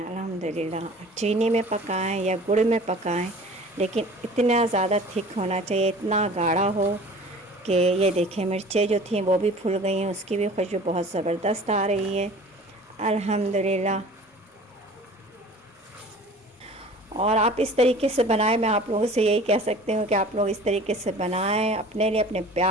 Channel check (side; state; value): both; normal; correlation 0.44